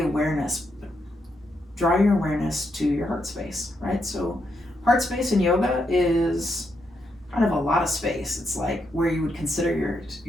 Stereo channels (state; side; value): normal; both; correlation 0.81